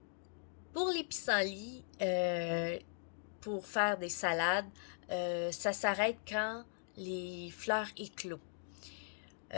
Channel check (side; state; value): right; silent; digital silence